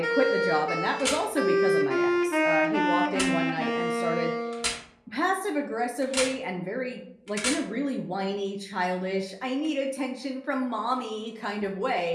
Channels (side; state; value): both; identical; correlation 1.00